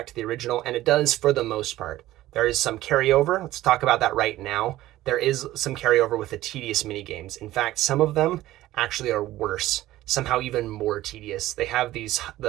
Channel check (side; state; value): left; quieter; 15.5 dB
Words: to the original, and it does for the most part. There is some carryover. Let's talk about that right now. There is some carryover with the tedious mini games. In fact, some of them actually are worse, somehow even more tedious. They have